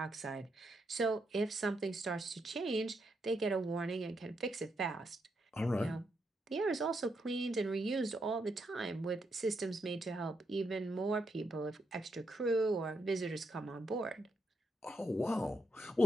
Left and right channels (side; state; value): both; normal; correlation 0.81